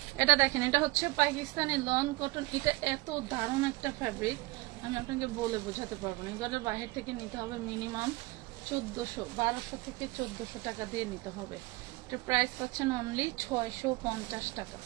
এটা দেখেন, এটা হচ্ছে পাকিস্তানি লন কটন। এটা এত দারুণ একটা ফ্যাব্রিক, আমি আপনাকে বলে বোঝাতে পারবো না। এগুলো বাইরে থেকে নিতে হবে মিনিমাম 1200 থেকে 1400 টাকা দিয়ে নিতে হবে। এটা প্রাইস পাচ্ছেন অনলি 650 টাকা,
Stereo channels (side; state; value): left; quieter; 22.0 dB